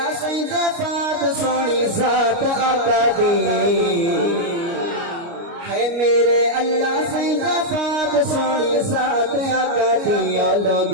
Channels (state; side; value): late; left; 29 ms